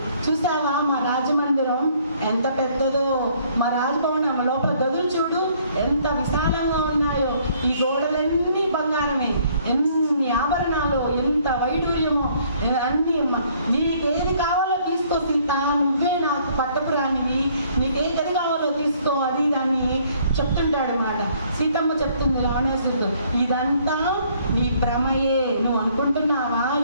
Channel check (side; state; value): both; inverted; correlation -0.63